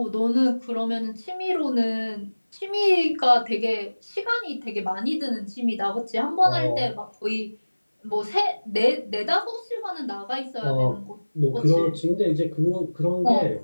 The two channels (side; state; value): both; inverted; correlation -1.00